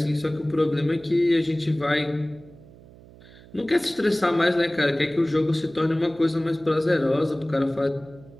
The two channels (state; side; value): noise; right; hum, 22 dB below the sound